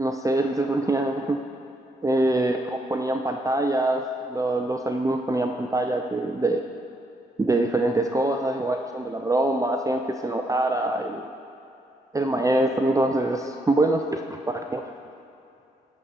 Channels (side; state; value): both; normal; correlation 0.75